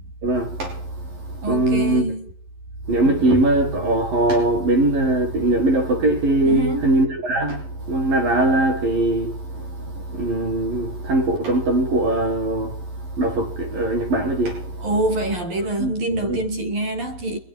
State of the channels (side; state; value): left; late; 11 ms